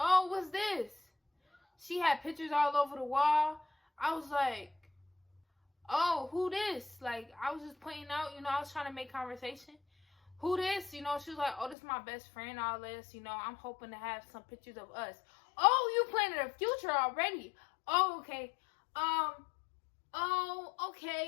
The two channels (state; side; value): drops out; right; at 11.8 s